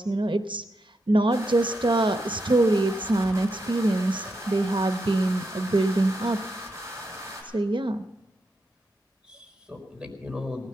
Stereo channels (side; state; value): both; normal; correlation 0.84